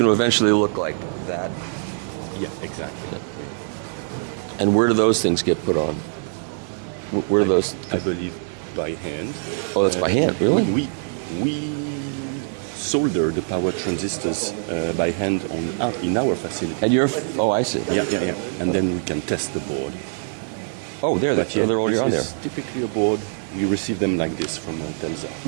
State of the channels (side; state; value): left; silent; digital silence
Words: eventually look like that. Yeah, exactly. And where do those things get put on? Where do those? I believe by hand. Oh, that's by hand, really? We solder the power transistors by hand in our facility. And you're? Oh, I see. Yeah. And then we can test the board. Oh, they're already on there. This is typically a board. You receive them like this from